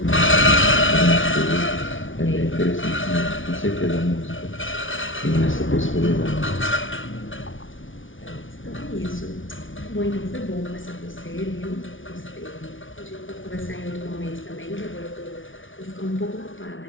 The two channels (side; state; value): right; late; 0.57 ms